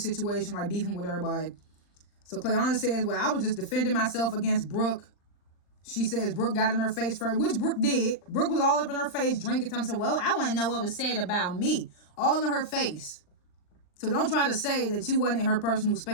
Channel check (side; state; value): right; late; 39 ms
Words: situation, like beefing with everybody. So Clayana says, well, I was just defending myself against Brooke. She says Brooke got in her face first, which Brooke did. Brooke was all up in her face, drinking. Time said, well, I want to know what was said about me. All in her face. So don't try to say that you wasn't in her personal